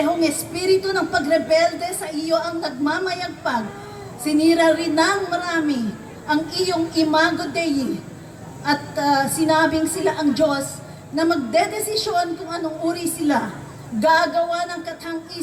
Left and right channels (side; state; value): both; identical; correlation 1.00